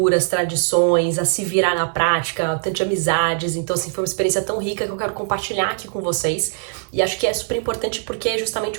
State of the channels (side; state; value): left; silent; digital silence